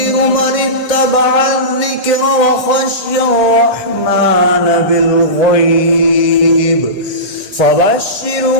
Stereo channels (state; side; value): late; right; 1.6 ms